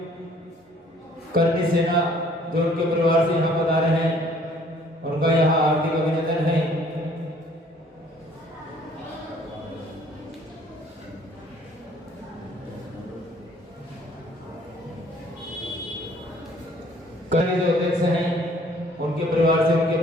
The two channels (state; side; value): normal; both; correlation 0.58